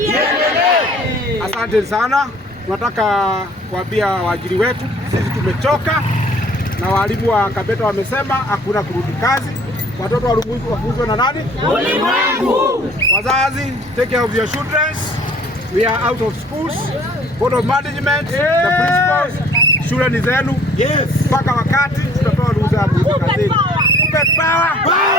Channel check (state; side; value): normal; both; correlation 0.54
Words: Asante sana. Tunataka kuambia waajiri wetu sisi tumechoka, na walimu wa Kabete wamesema hakuna kurudi kazi. Watoto wafunzwe na nani? Ulimwengu. Wazazi, take care of your children. We are out of schools. Board of management, the principals, shule ni zenu. Mpaka wakati tutatoa ruhusa ya kurudi kazini. Kuppet power.